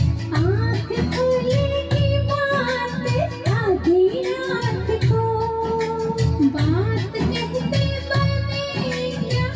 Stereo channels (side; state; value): both; identical; correlation 1.00